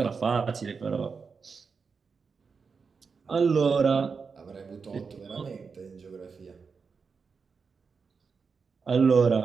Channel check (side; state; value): left; quieter; 5.3 dB